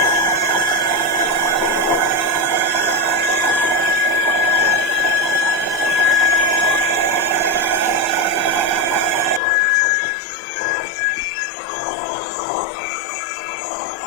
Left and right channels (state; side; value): drops out; right; at 9.4 s